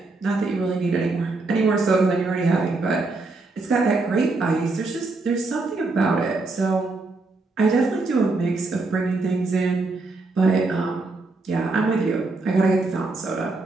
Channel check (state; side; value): quieter; left; 3.5 dB